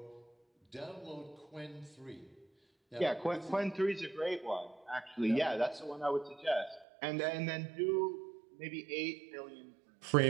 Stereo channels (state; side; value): drops out; left; at 6.9 s